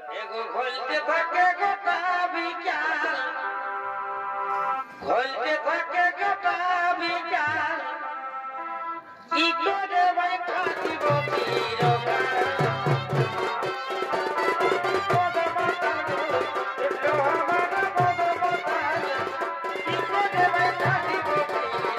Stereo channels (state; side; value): identical; both; correlation 1.00